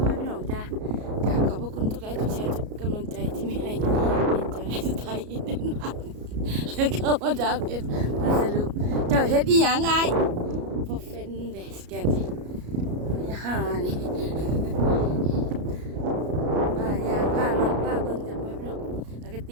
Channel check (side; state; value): left; late; 33 ms